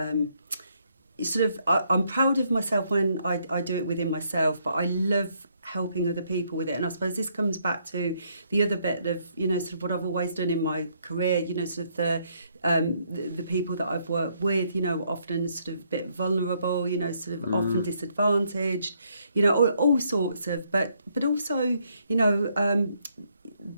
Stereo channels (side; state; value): both; inverted; correlation -0.72